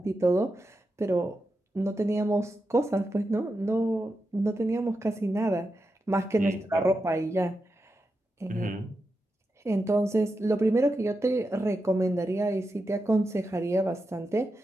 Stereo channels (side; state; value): both; normal; correlation 0.88